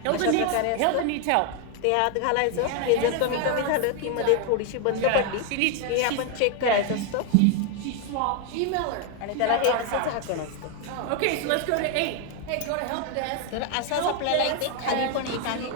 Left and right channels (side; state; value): both; different; correlation 0.01